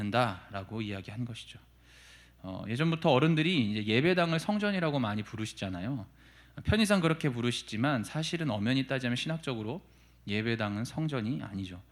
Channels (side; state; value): both; identical; correlation 1.00